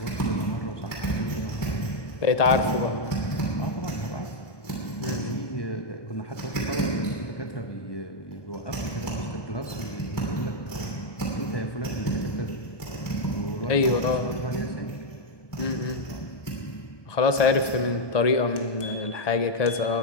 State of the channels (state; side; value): late; right; 1.2 ms